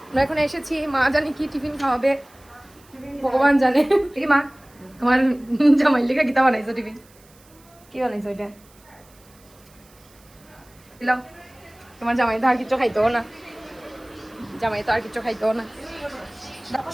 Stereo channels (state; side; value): noise; right; hiss, 28 dB below the sound